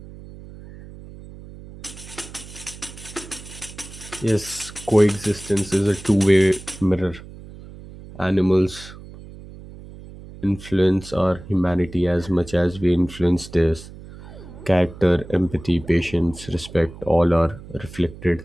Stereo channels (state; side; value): noise; right; hum, 16 dB below the sound